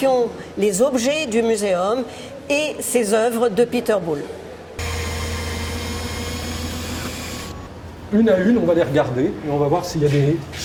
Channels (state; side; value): identical; both; correlation 1.00